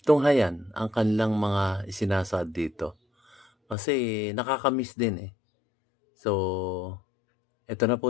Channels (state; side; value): drops out; right; at 3.8 s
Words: tunghayan ang kanilang mga isinasad dito kasi nakakamiss din eh. So, eto na po